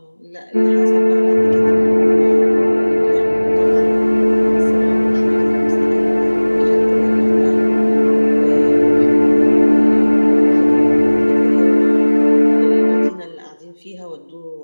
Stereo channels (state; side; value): inverted; both; correlation -1.00